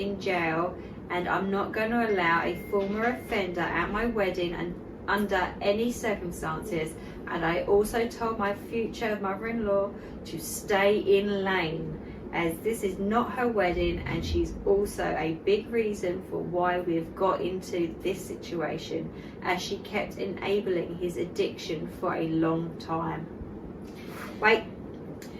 jail, and I'm not going to allow a former offender at my wedding and under any circumstances. And I also told my future mother-in-law to stay in lane, as this is not her wedding, and she's also a big reason for why we've got into this situation, as she kept enabling his addiction for a long time. Wait.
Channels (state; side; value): identical; both; correlation 1.00